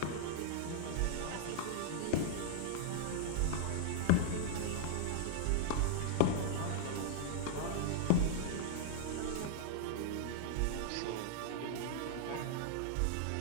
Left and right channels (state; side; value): different; both; correlation -0.01